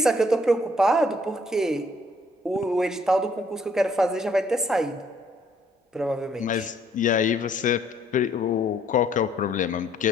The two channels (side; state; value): both; normal; correlation 0.64